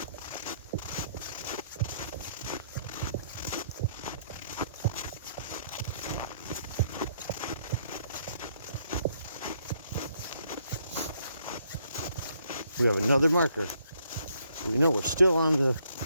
We have another marker. We know we're still on the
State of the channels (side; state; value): both; inverted; correlation -0.70